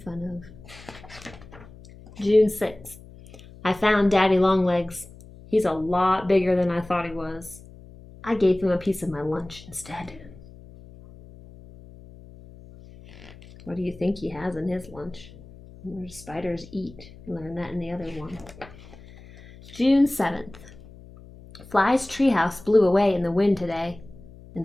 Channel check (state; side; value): noise; left; hum, 20 dB below the sound